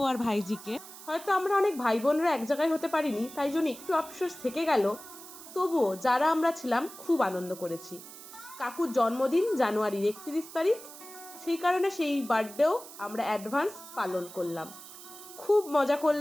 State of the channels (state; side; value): noise; right; hiss, 16 dB below the sound